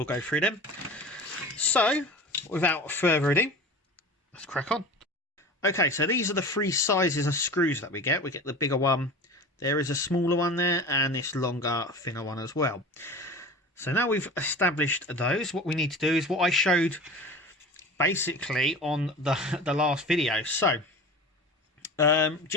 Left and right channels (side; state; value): both; normal; correlation 0.35